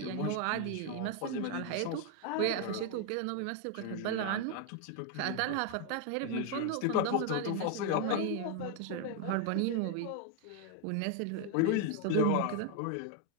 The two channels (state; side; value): different; both; correlation 0.01